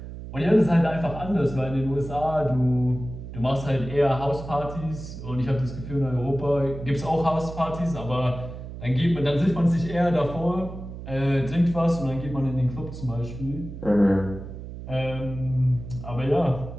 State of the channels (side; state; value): right; noise; hum, 11 dB below the sound